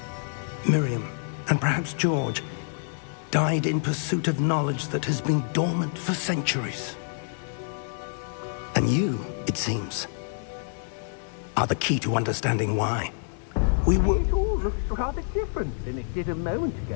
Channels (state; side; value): silent; right; digital silence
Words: Miriam, and perhaps George, died in pursuit of knowledge that has been dormant for centuries. And you, it seems, are the key to understanding why. It all looks rather different than it did a moment